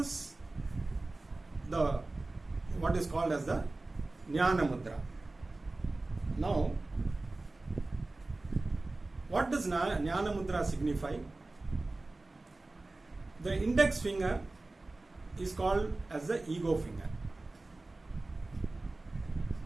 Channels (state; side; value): quieter; left; 3.1 dB